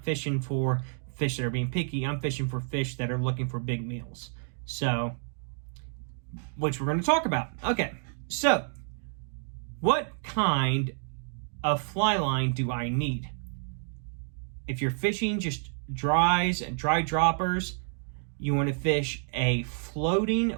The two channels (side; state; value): left; silent; digital silence